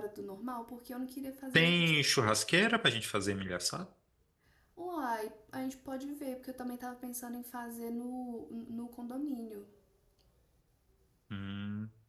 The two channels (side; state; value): both; identical; correlation 1.00